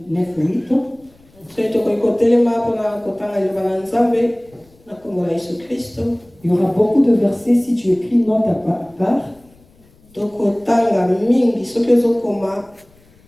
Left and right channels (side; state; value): left; noise; rumble, 30 dB below the sound